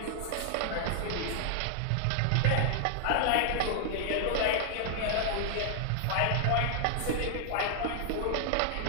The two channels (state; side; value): different; both; correlation 0.00